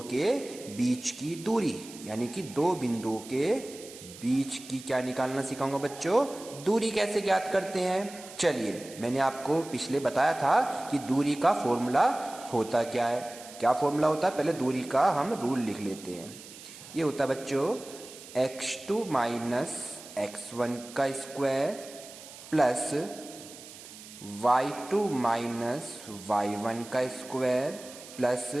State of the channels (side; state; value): right; noise; hiss, 16 dB below the sound